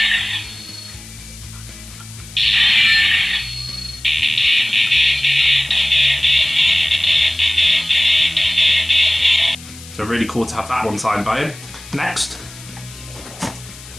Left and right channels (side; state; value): left; noise; hiss, 18 dB below the sound